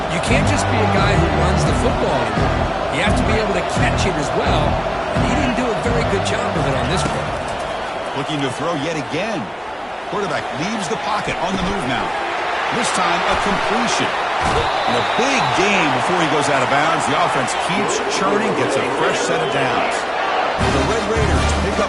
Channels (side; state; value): both; identical; correlation 1.00